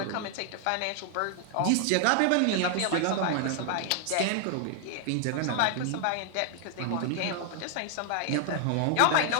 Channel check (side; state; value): both; different; correlation 0.00